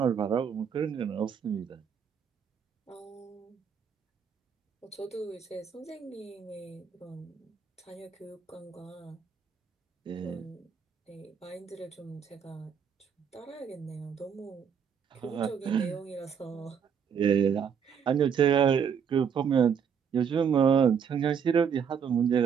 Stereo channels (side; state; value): left; quieter; 7.2 dB